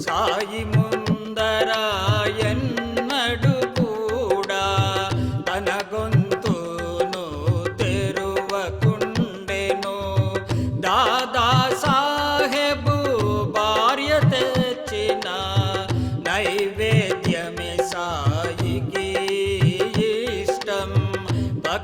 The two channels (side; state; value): both; identical; correlation 1.00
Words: సాయి ముందర ఎన్నడు కూడా తన గొంతును తెరువకుండెను. దాదా సాహెబు భార్య తెచ్చిన నైవేద్యమే సాయికి ఇష్టం.